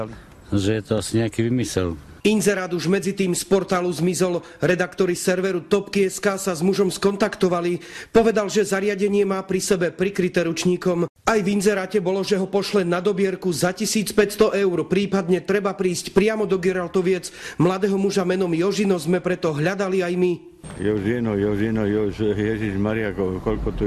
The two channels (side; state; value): both; identical; correlation 1.00